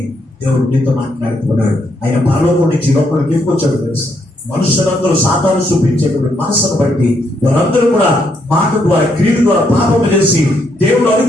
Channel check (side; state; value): both; normal; correlation 0.75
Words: దేవుడు నీతో మాట్లాడుతున్నాడు. ఆయన పరలోకం నుంచి లోపలికి తీసుకొచ్చాడు తెలుసు. మనుషులందరూ సాతాను చూపించేటువంటి మనసును బట్టి వారందరూ కూడా మాట ద్వారా క్రియల ద్వారా పాపం చేసి దేవుడు